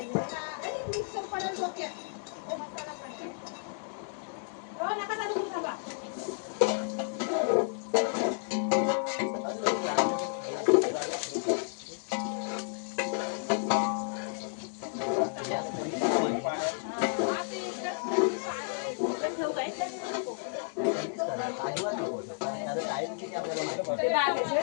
मिक्सर पडेल डोक्यात हो नका चालू करू थांबा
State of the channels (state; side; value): silent; right; digital silence